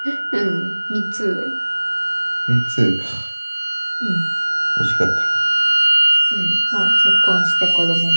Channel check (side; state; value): both; inverted; correlation -1.00